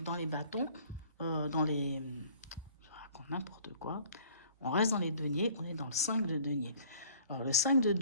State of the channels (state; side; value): inverted; both; correlation -0.53